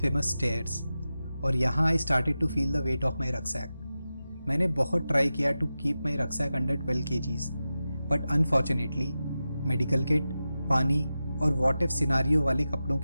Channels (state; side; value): inverted; both; correlation -0.93